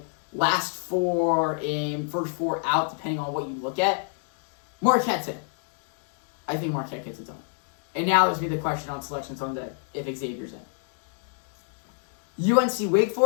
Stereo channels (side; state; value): right; silent; digital silence